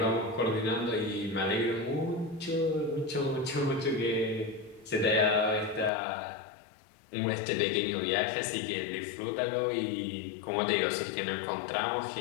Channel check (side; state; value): right; drops out; at 5.9 s